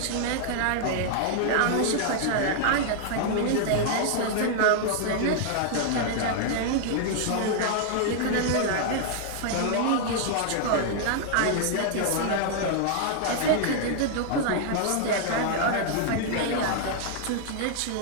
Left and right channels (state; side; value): different; both; correlation 0.00